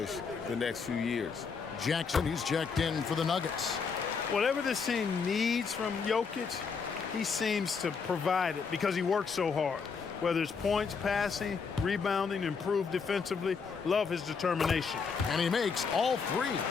the next few years. Jackson, he's checked in for the Nuggets. Whatever this team needs from Jokic, he seems to provide it because he works so hard. Whether it's points, passing, rebounding, improved defensively, love his determination. And he makes all 3.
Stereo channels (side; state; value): right; quieter; 5.5 dB